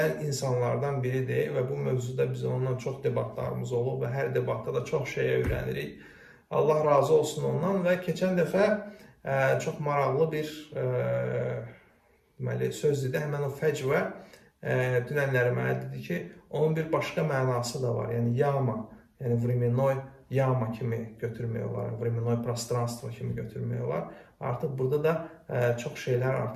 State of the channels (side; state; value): both; identical; correlation 1.00